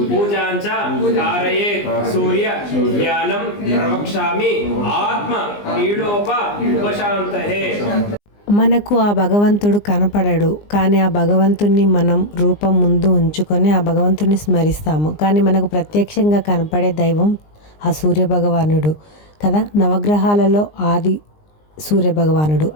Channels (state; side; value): late; right; 19 ms